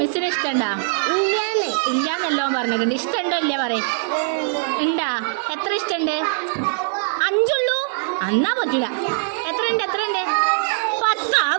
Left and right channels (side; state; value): left; silent; digital silence